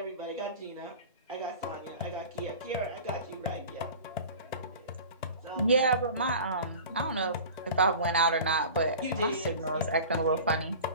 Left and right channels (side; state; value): both; inverted; correlation -0.39